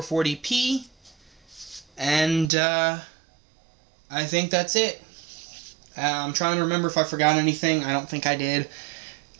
and I think that's it. I'm trying to remember if I forgot anything. I don't think I did.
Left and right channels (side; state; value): left; drops out; at 2.5 s